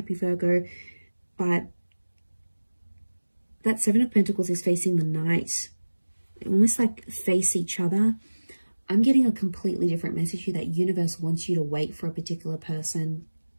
Virgo. But that 7 of Pentacles is facing the Knight. They almost like face each other. I'm getting a completely different message here, that universe wants you to wait for a particular person.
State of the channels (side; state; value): both; inverted; correlation -1.00